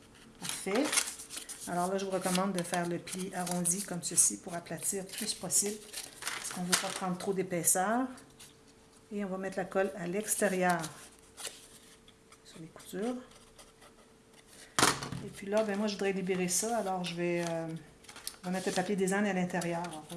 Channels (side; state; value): both; identical; correlation 1.00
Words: Parfait. Alors là, je vous recommande de faire le pli arrondi comme ceci pour aplatir le plus possible. Parce qu'on ne veut pas prendre trop d'épaisseur. Et on va mettre la colle à l'extérieur sur les coutures. Et puis là, ben moi, je voudrais libérer ça. Alors, je vais mettre le papier design à l'intérieur.